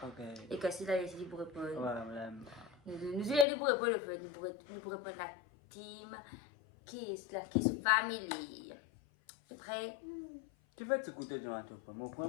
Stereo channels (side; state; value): right; drops out; at 3.5 s